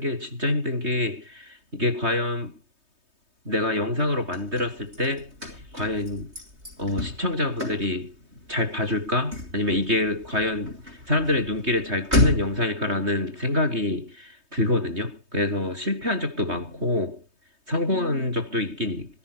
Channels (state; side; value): late; left; 3.2 ms